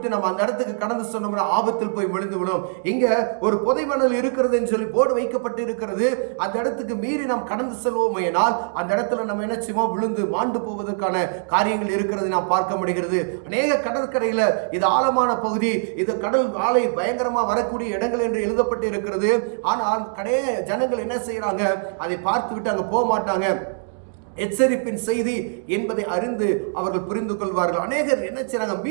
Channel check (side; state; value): left; silent; digital silence